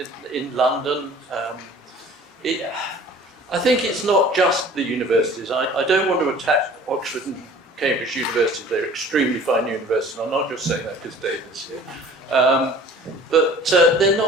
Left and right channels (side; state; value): both; normal; correlation 0.48